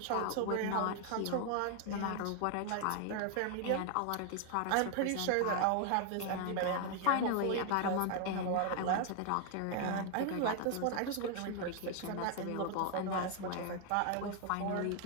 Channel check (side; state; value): both; different; correlation 0.00